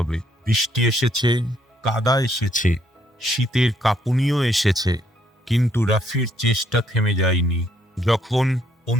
বৃষ্টি এসেছে, কাদা এসেছে, শীতের কাঁপুনিও এসেছে, কিন্তু রাফির চেষ্টা থেমে যায়নি। যখন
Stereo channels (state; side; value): normal; both; correlation 0.70